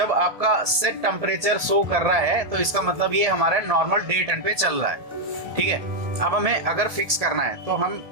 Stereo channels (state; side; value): late; left; 1.7 ms